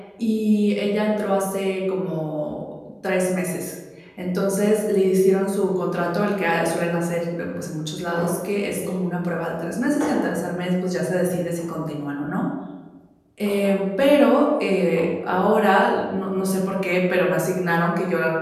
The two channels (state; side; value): identical; both; correlation 1.00